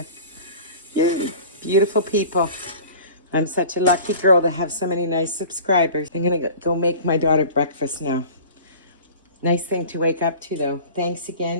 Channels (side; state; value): both; inverted; correlation -0.41